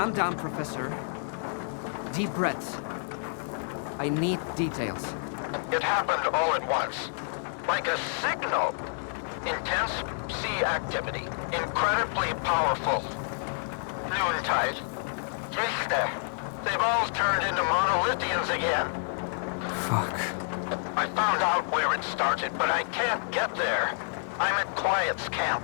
down, Professor. Deep breaths. I need details. It happened all at once. Like a signal. Intense sea activity. Incredibly powerful. Noontide. Este. They've all turned into monolithians again. Fuck. I found out where it started, but I can't get there. I'm at Quiet's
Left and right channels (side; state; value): right; silent; digital silence